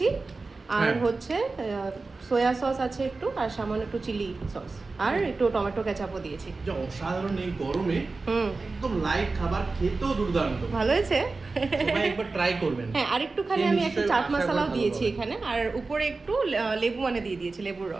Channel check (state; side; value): quieter; left; 3.8 dB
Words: আর হচ্ছে সয়া সস আছে একটু, আর সামান্য একটু চিলি সস, আর একটু টমেটো কেচাপও দিয়েছি। যা অসাধারণ এই গরমে একদম লাইট খাবার, খেতেও দুর্দান্ত। ভালো হয়েছে? সবাই একবার ট্রাই করবেন। হ্যাঁ, আর একটুখানি আমি একটু চাট মশলাও দিয়েছি এখানে, আর উপরে একটু লেবু মানে দিয়ে দিয়েছি, লেবুর